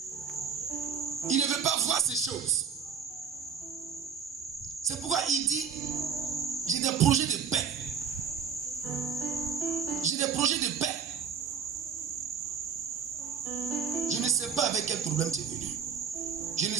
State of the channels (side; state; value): left; quieter; 6.8 dB